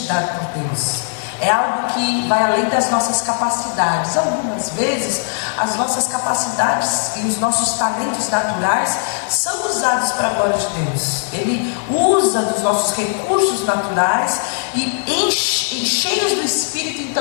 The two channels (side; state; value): right; silent; digital silence